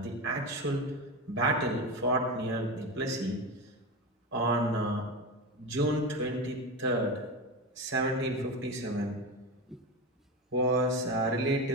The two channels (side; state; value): both; normal; correlation 0.20